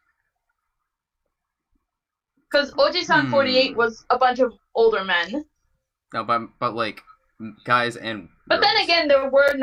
Because Oji-san 48 was a bunch of older men. No, but like, guys and But girls. then again, there were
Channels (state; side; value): identical; both; correlation 1.00